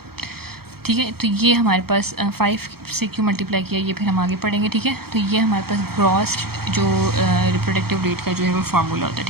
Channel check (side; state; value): left; late; 0.95 ms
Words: ठीक है, तो ये हमारे पास 5 से क्यों मल्टीप्लाई किया ये फिर हम आगे पढ़ेंगे। ठीक है, तो ये हमारे पास ग्रॉस जो रिप्रोडक्टिव रेट का जो है वो फार्मूला होता है।